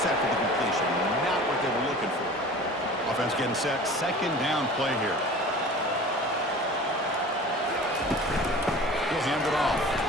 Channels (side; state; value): both; normal; correlation 0.40